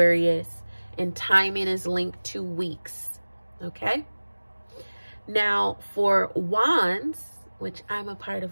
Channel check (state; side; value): inverted; both; correlation -1.00